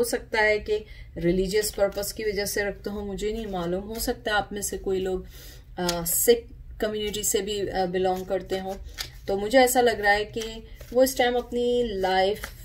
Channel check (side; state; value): both; identical; correlation 1.00